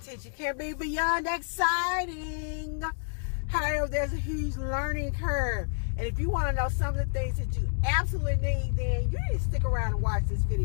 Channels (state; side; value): silent; right; digital silence